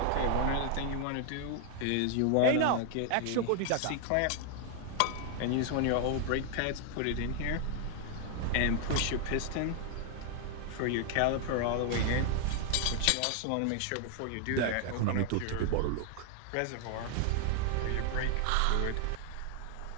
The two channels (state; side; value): different; both; correlation 0.00